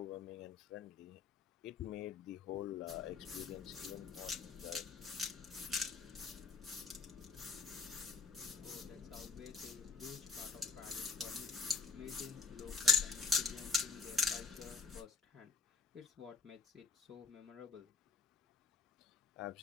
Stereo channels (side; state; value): right; quieter; 4.7 dB